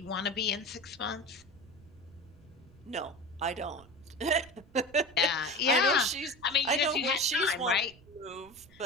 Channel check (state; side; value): noise; right; rumble, 24 dB below the sound